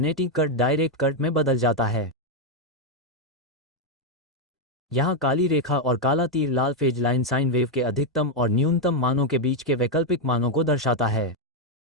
करंट डायरेक्ट करंट में बदल जाता है। यहाँ काली रेखा और काला तीर लाल फेज लाइन साइन वेव के अधिकतम और न्यूनतम मानों के बीच के वैकल्पिक मानों को दर्शाता है।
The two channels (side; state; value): both; normal; correlation 0.02